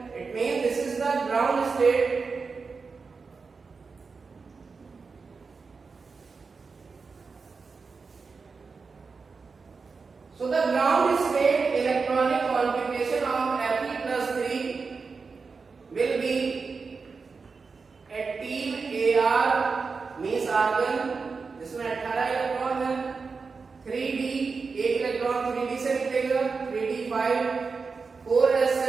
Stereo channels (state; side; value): quieter; left; 4.8 dB